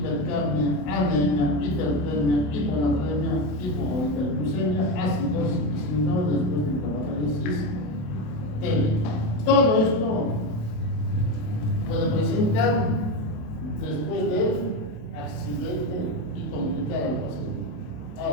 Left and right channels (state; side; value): late; right; 27 ms